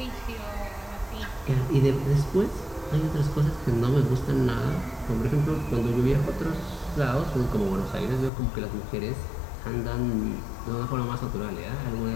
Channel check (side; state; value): right; drops out; at 8.3 s